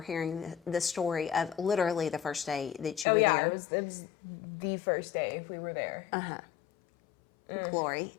hearing the story of literally the first day that you were there. It was the first day we were there. Glory.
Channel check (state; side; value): drops out; right; at 3.1 s